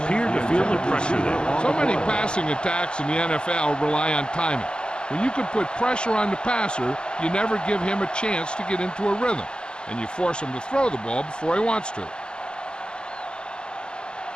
to feel the pressure there. So many passing attacks in the NFL rely on timing. When you can put pressure on the passer, you never give him a chance to get into a rhythm, and you force him to throw the ball before he wants to.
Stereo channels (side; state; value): right; late; 0.051 ms